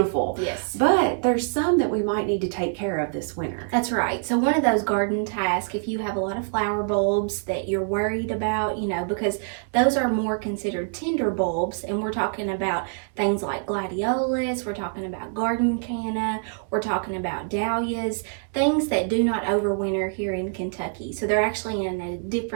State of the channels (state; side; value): silent; left; 62 dB below the other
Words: Yes. But there's some that we might need to take care of this winter. That's right. So one of those garden tasks, if you have a lot of flower bulbs that you're worried about, because those are more considered tender bulbs, and we're talking about things like gladiolus, we're talking about garden canna, we're talking about dahlias, things that do not overwinter here in Kentucky. So they're actually in a